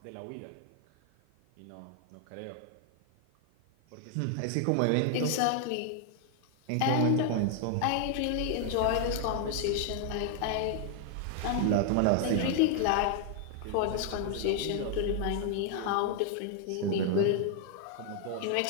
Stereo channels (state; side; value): different; both; correlation 0.00